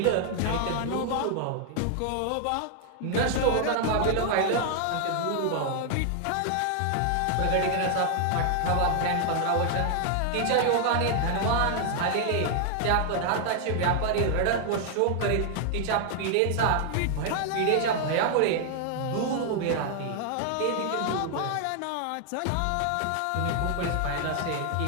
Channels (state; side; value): different; both; correlation 0.00